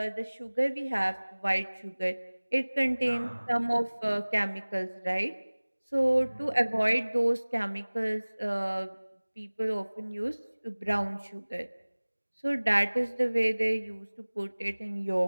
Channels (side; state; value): both; inverted; correlation -1.00